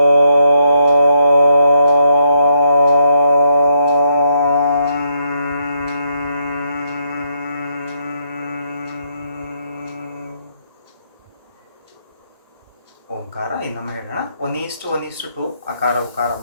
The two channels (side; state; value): both; inverted; correlation -0.77